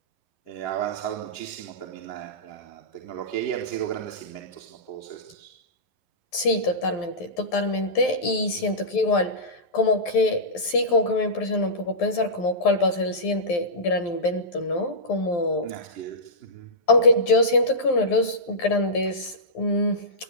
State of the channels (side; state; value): right; late; 12 ms